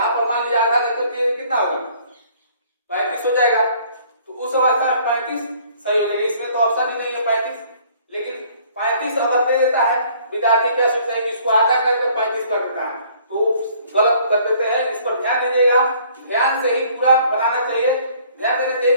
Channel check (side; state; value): both; inverted; correlation -0.58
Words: पर मान लीजिए आधा देते तो ये कितना होगा 35 हो जाएगा, तो उस अवस्था में 35 सही हो जाएगा। इसमें तो ऑप्शन ही नहीं है 35, लेकिन 35 अगर दे देता है, विद्यार्थी क्या सोचता है कि इसको आधा करके 35 कर देता है, तो गलत कर देते हैं। इस पर ध्यान दीजिएगा, ध्यान से ही पूरा बनाना चाहिए, ध्यान देना चाहिए